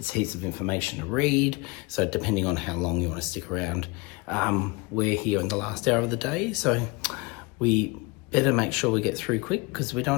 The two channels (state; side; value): quieter; right; 26.2 dB